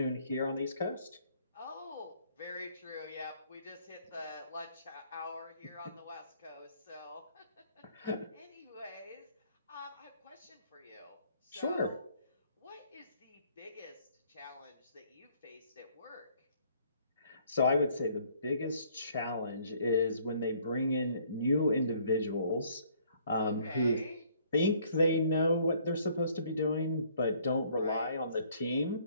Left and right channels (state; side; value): inverted; both; correlation -0.62